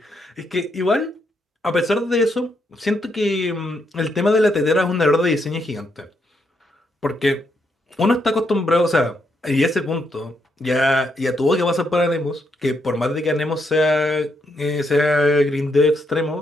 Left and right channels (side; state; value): both; normal; correlation 0.78